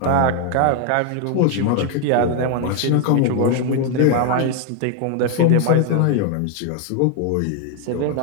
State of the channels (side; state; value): both; different; correlation 0.00